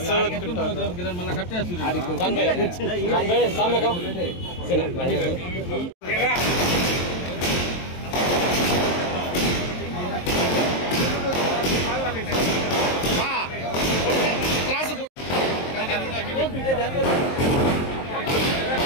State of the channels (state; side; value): late; right; 23 ms